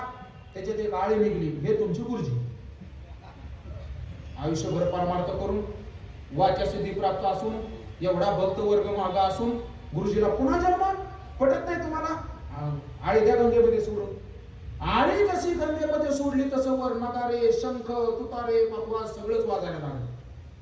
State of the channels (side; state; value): both; identical; correlation 1.00